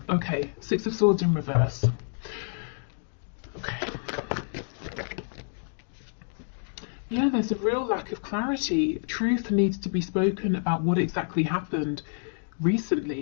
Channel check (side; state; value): right; silent; digital silence